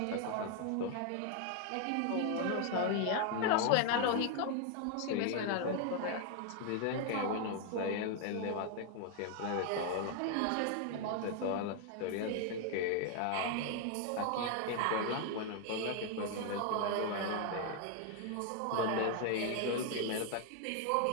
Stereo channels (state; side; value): different; both; correlation 0.00